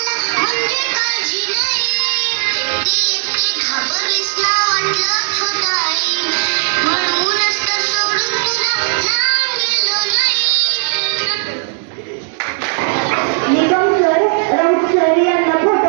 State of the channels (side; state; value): left; silent; digital silence